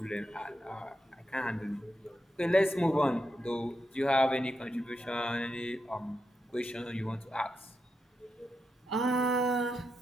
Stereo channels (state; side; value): normal; both; correlation 0.86